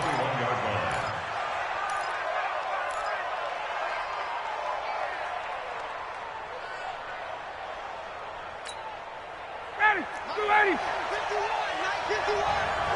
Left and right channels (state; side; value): identical; both; correlation 1.00